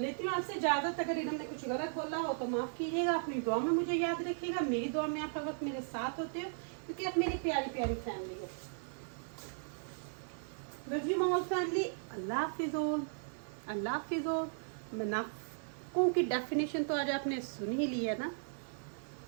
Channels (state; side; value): silent; left; 53 dB below the other